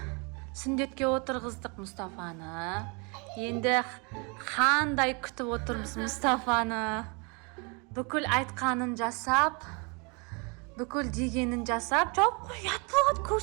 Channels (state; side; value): quieter; left; 32.3 dB